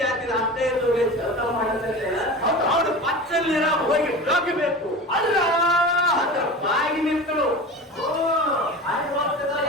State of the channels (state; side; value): normal; both; correlation 0.32